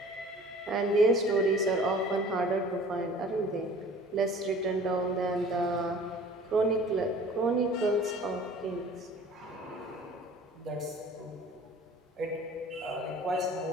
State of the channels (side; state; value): both; normal; correlation 0.47